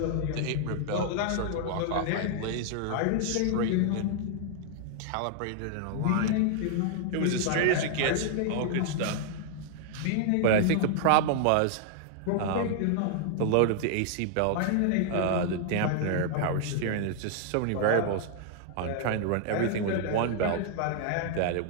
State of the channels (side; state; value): both; different; correlation -0.01